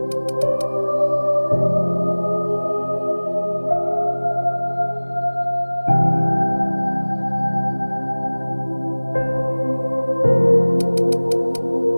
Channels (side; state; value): both; inverted; correlation -1.00